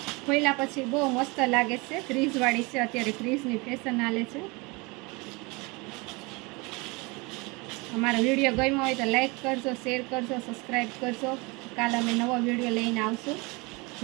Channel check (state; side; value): quieter; left; 26.9 dB